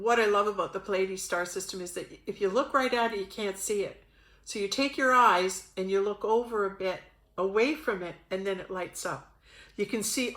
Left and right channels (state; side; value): identical; both; correlation 1.00